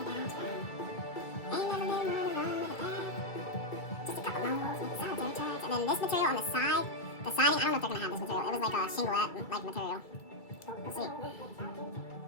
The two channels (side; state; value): right; late; 2.3 ms